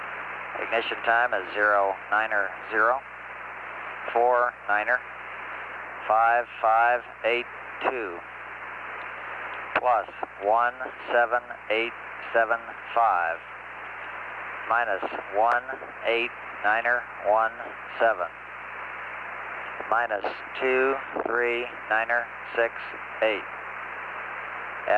Ignition time is 090 49er 5582 plus 17875 minus 189er17 minus 239er68.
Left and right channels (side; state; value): both; identical; correlation 1.00